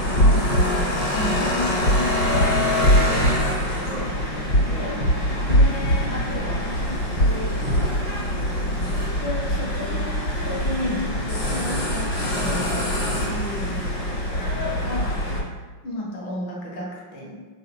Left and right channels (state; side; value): late; right; 5.6 ms